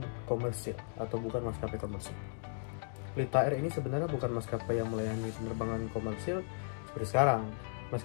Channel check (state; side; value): silent; right; digital silence